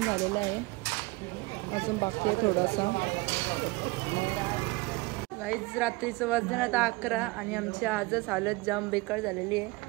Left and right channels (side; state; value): left; quieter; 23.8 dB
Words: झालेलं आहे. अजून बाकी आहे थोडासा. गाईज रात्रीचं वाजले आता 11 आणि आमची आजच हालत जाम बेकार झालेली आहे.